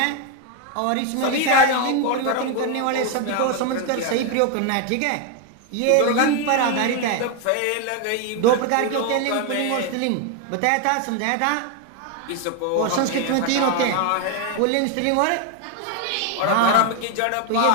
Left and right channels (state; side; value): different; both; correlation 0.01